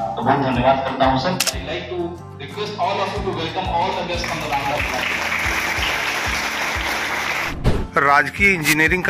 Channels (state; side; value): identical; both; correlation 1.00